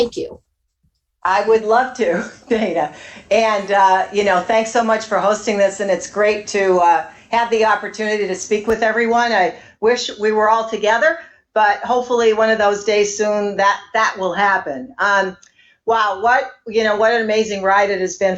you. I would love to, Dana. And, thanks so much for hosting this. And it's great to have the opportunity to speak with everyone. I wish we were all together, but hopefully one of those days soon that will happen. Wow, what an amazing ride it has been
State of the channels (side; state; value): both; identical; correlation 1.00